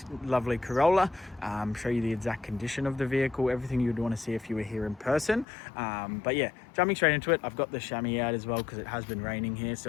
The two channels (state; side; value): drops out; right; at 5.5 s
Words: lovely Corolla, show you the exact condition of the vehicle, everything you'd want to see if you were here in person. But yeah, jumping straight into it, I've got the chamois out as well because it has been raining here,